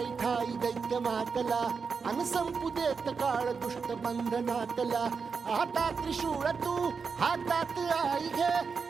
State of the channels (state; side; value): quieter; left; 5.4 dB